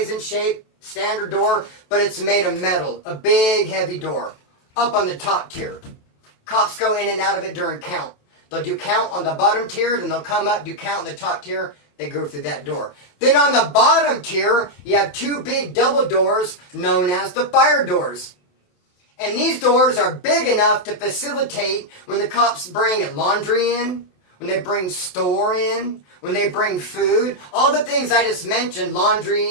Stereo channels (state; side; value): late; right; 28 ms